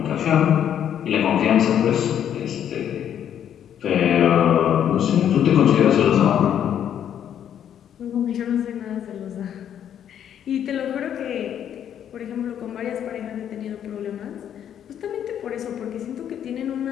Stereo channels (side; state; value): right; quieter; 9.6 dB